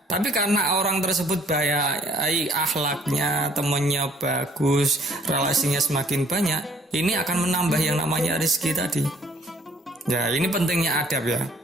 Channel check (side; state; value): both; normal; correlation 0.60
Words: Tapi karena orang tersebut baik akhlaknya, temannya bagus, relasinya semakin banyak, ini akan menambah yang namanya rezeki tadi. Ya, ini pentingnya adab ya.